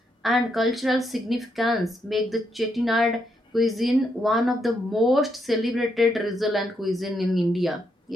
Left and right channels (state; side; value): normal; both; correlation 0.79